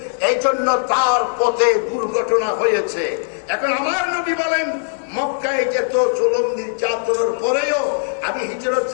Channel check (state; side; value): silent; right; digital silence